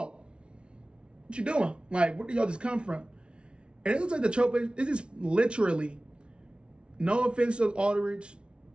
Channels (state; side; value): late; left; 0.058 ms